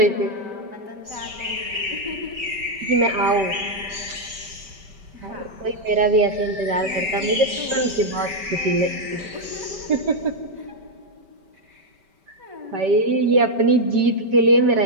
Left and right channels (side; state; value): left; late; 5.2 ms